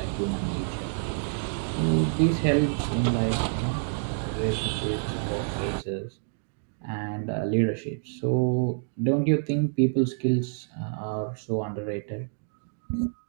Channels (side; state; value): left; silent; digital silence